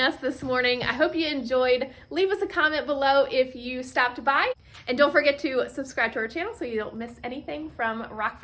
this morning. I hope you enjoyed. Leave us a comment below if you stopped by. And don't forget to subscribe to our channel so you don't miss anything from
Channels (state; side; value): identical; both; correlation 1.00